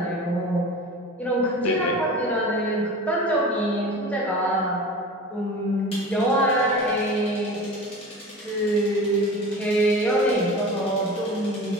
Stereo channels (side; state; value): both; normal; correlation 0.35